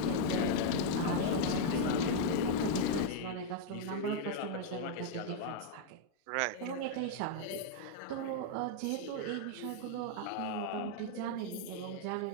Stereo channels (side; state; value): both; different; correlation 0.00